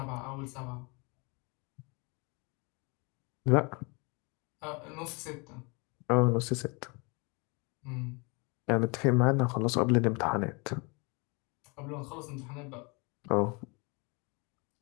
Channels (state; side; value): quieter; right; 30.2 dB